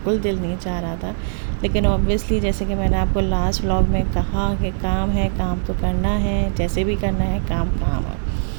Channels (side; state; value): left; silent; 65 dB below the other